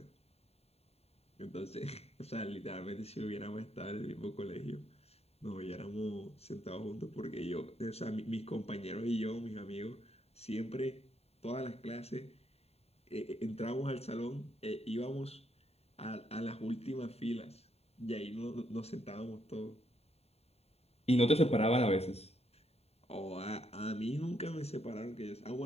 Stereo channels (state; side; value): late; right; 0.30 ms